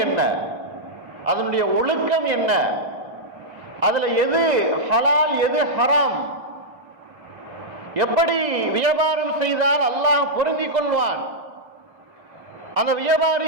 என்ன, அதனுடைய ஒழுக்கம் என்ன, அதுல எது ஹலால் எது ஹராம், எப்படி வியாபாரம் செய்தால் அல்லாஹ் பொருந்திக் கொள்வான், அந்த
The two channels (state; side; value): late; left; 1.9 ms